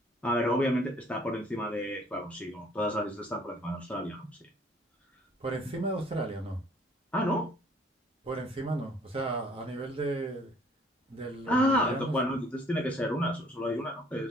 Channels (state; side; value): normal; both; correlation 0.58